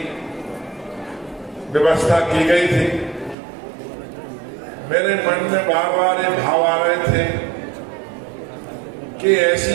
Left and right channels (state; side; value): drops out; left; at 3.4 s